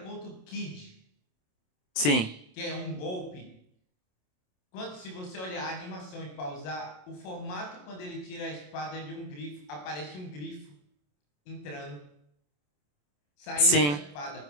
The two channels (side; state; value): right; late; 27 ms